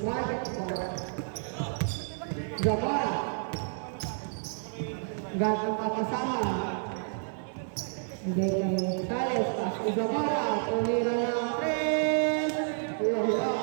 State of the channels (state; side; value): silent; left; 58 dB below the other